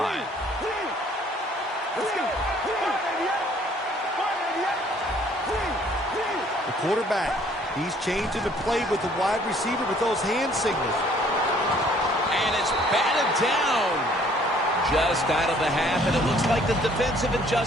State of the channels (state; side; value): normal; both; correlation 0.59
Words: The quarterback, he's changing the play with the wide receiver with those hand signals. And it's batted down. Just out of the half, and it looks like the defensive